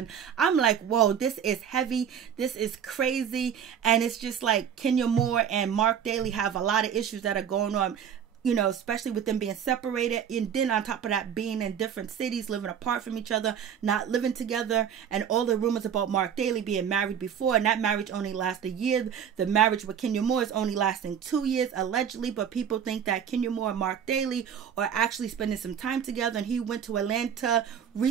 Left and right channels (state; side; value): quieter; left; 8.3 dB